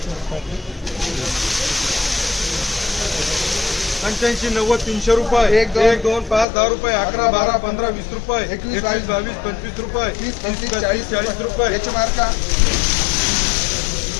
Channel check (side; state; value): right; drops out; at 6.5 s